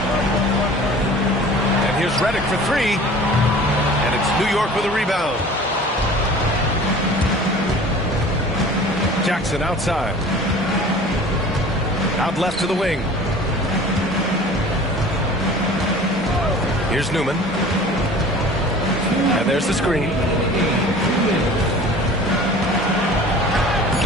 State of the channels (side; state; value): both; normal; correlation 0.44